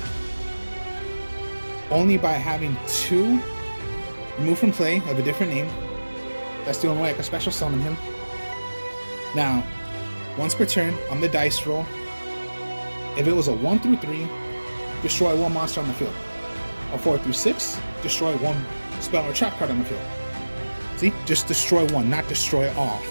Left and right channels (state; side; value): inverted; both; correlation -1.00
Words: only by having 2 removed from play of a different name. That's the only way I can special summon him. Now, once per turn on the dice roll, if it was a 1 through 3, destroy 1 monster on the field. A 4 through 6, destroy 1 spell or trap card on the field. See, just destroy 1, not destroy all.